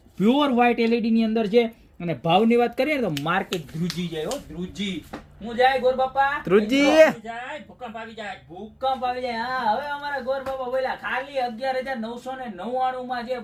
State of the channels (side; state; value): both; identical; correlation 1.00